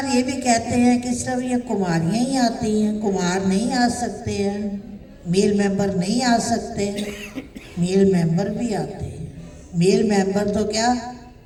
ये भी कहते हैं कि सिर्फ ये कुमारियाँ ही आती हैं, कुमार नहीं आ सकते हैं, मेल मेंबर नहीं आ सकते। मेल मेंबर भी आते हैं। मेल मेंबर तो क्या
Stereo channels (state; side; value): identical; both; correlation 1.00